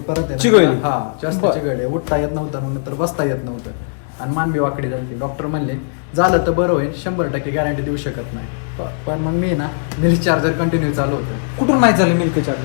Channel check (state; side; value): silent; right; 61 dB below the other